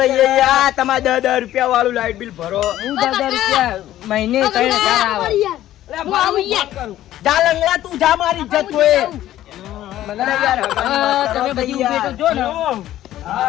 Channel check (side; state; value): right; quieter; 13.4 dB